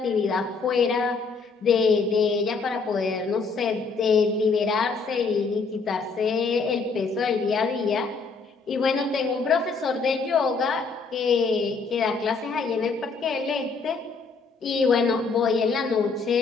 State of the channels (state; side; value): quieter; right; 4.6 dB